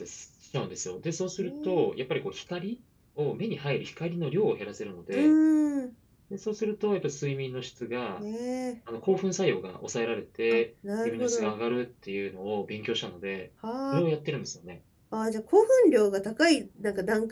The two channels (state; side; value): identical; both; correlation 1.00